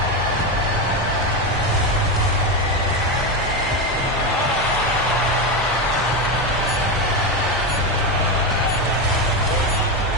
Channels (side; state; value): both; normal; correlation 0.13